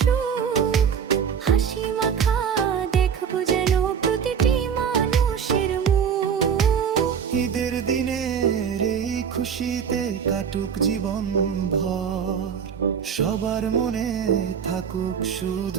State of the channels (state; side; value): quieter; left; 7.3 dB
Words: সুখ, হাসি মাখা দেখব যেন প্রতিটি মানুষের মুখ। ঈদের দিনের এই খুশিতে কাটুক জীবন ভর, সবার মনে থাকুক